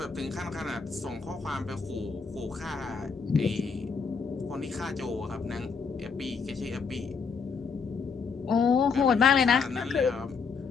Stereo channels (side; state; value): right; quieter; 5.3 dB